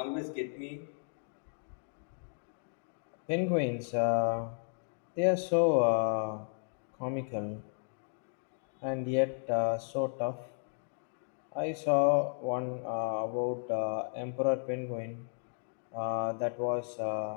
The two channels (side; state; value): right; silent; digital silence